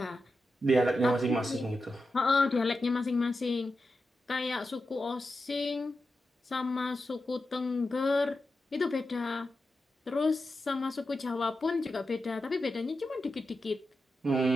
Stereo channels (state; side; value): normal; both; correlation 0.90